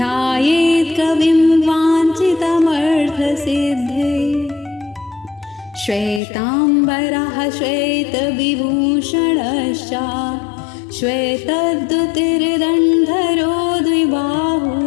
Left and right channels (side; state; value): right; drops out; at 6.2 s